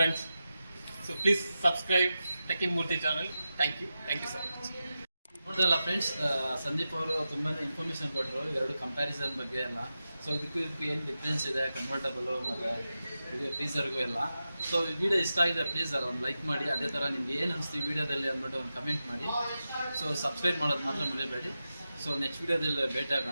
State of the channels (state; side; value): inverted; both; correlation -0.92